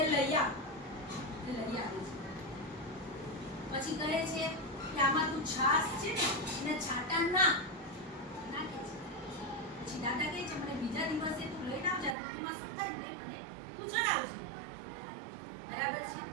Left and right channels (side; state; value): left; drops out; at 12.2 s